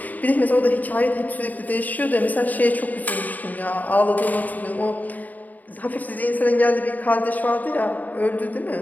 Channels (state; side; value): late; right; 0.080 ms